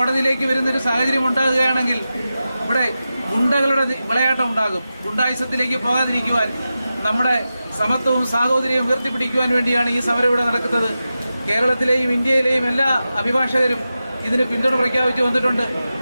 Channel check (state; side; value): inverted; both; correlation -0.92